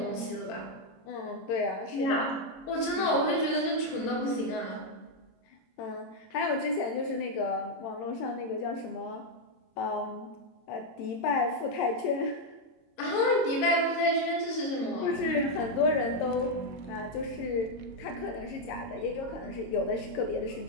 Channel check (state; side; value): late; right; 22 ms